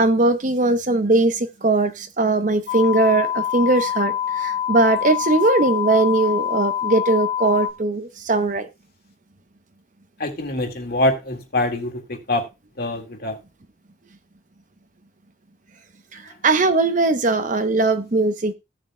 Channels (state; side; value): normal; both; correlation 0.18